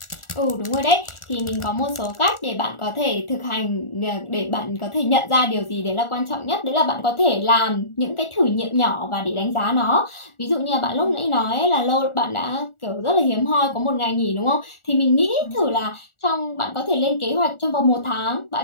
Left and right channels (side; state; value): right; late; 1.4 ms